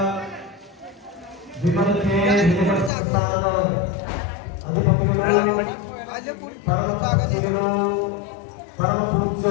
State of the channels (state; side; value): drops out; right; at 2.9 s